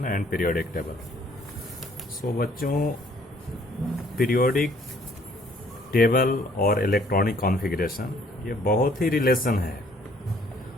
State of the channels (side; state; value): both; normal; correlation 0.61